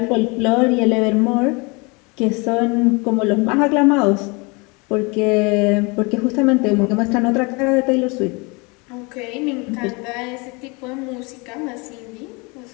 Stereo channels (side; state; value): right; quieter; 28.4 dB